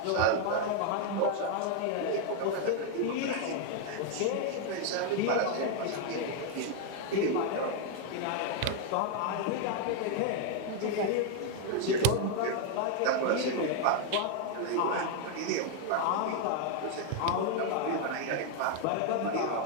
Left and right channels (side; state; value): both; different; correlation 0.00